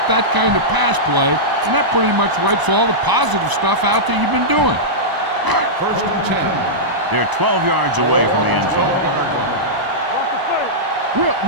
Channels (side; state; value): left; late; 1.0 ms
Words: that kind of pass play, and that pretty much wipes all the positive stuff out that you've been doing. First and 10. They're 12 yards away from the end zone. Will.